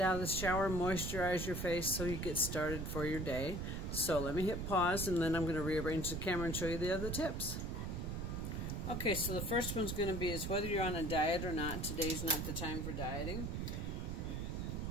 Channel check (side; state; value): right; noise; rumble, 3 dB below the sound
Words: of the shower, moisturize your face so you get started for your day. So let me hit pause, and then I'm going to rearrange the camera and show you the other tips. Okay, so the first one's going to be is whether you're on a diet or not. Today's not the time for dieting.